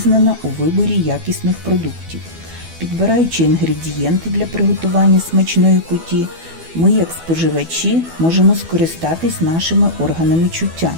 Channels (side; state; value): left; late; 12 ms